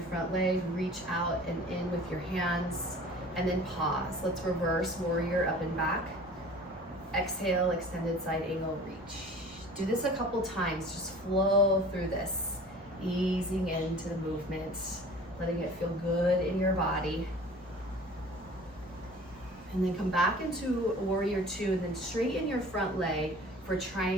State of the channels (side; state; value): both; normal; correlation 0.44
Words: front leg, reach out and in with your hands, and then pause. Let's reverse warrior up and back. Exhale, extended side angle, reach. Do this a couple times, just flow through this. Easing into the movement, letting it feel good in your body. And then come back into warrior two, and then straighten your front leg for